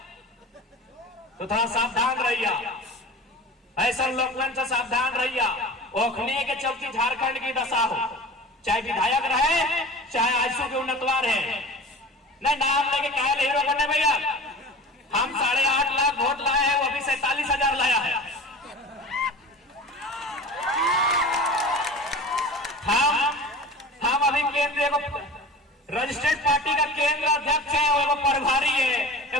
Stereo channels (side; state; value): both; normal; correlation 0.36